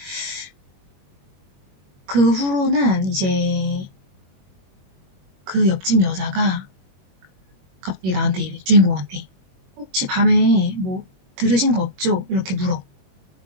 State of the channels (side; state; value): left; late; 21 ms